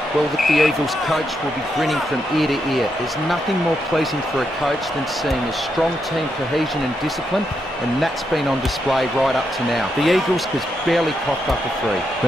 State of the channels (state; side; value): normal; both; correlation 0.81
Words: Well, the Eagles coach will be grinning from ear to ear. There's nothing more pleasing for a coach than seeing a strong team cohesion and discipline, and that's been on display right up to now. The Eagles has barely coughed up a free.